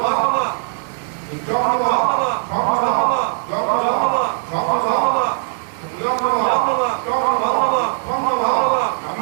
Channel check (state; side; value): silent; left; 64 dB below the other